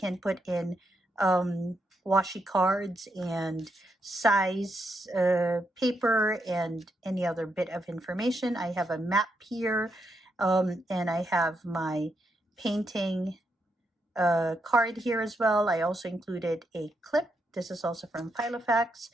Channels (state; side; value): normal; both; correlation 0.81